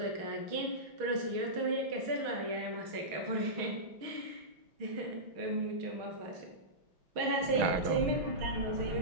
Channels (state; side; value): late; left; 6.3 ms